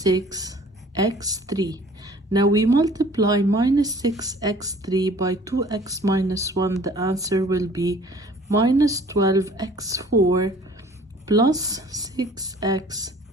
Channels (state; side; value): normal; both; correlation 0.51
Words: 6x3. Now we multiply minus 6x3 by 2x minus 1. The answer will be minus 12x4 plus